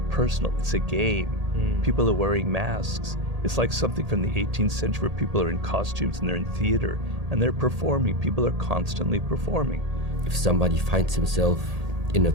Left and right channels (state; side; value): late; left; 1.8 ms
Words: personal, it's a game. People are wearing masks. It's like something from the 18th century where people are in costumes and they're in theater and they're performing. People are constantly performing. If somebody finds himself in a